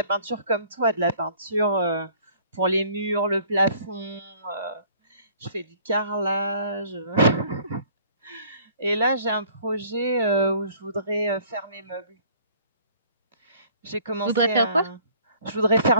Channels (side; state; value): both; inverted; correlation -0.55